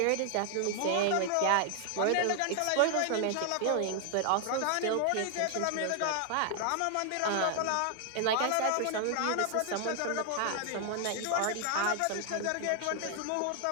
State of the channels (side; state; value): both; different; correlation 0.00